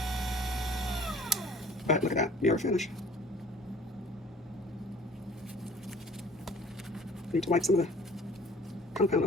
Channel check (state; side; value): normal; both; correlation 0.51